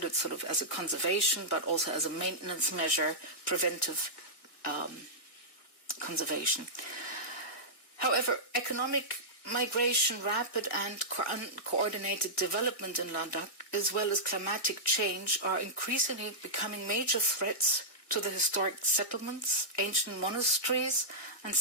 sort of as a conservation, but also as a maintenance measure, preventive conservation. However, economic migration, rapid and uncoordinated development in Ladakh, as well as climatic change, are increasingly becoming major threats to the historic settlements, ancient monasteries, and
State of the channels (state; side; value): late; right; 1.9 ms